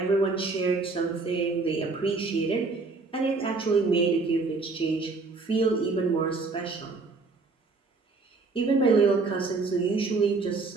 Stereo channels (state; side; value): quieter; left; 4.0 dB